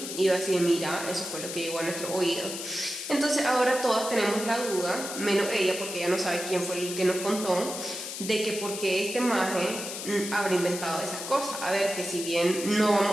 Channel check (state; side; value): noise; left; hiss, 7 dB below the sound